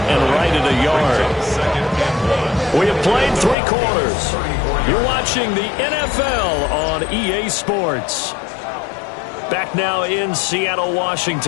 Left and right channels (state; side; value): drops out; right; at 3.6 s